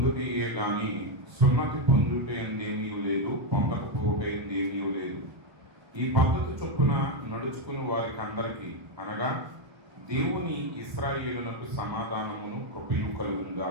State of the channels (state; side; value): late; left; 1.1 ms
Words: గాని సున్నతి పొందుట ఎందేమీ లేదు, పొందకపోవట ఎందేమీ లేదు. ఈ పద్ధతి చొప్పున నడుచుకుని వారికి అందరికీ అనగా దేవుని ఇశ్రాయేలునకు సమాధానమును కృపయు కలుగును